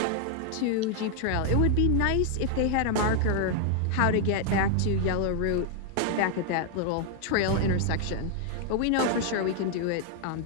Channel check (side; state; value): both; different; correlation 0.00